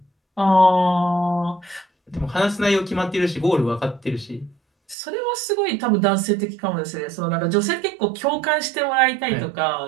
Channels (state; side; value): drops out; left; at 5.0 s